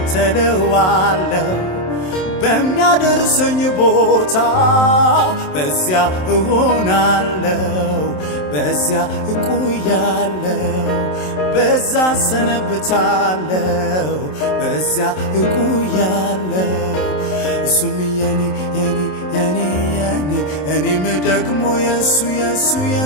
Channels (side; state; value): right; late; 27 ms